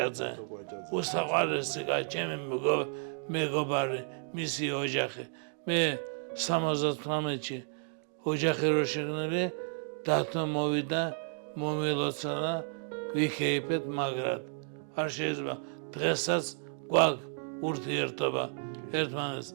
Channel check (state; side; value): silent; left; 56 dB below the other